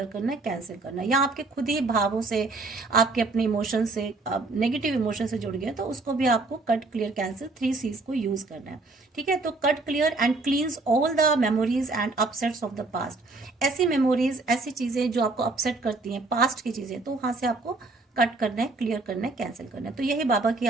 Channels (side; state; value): left; quieter; 3.4 dB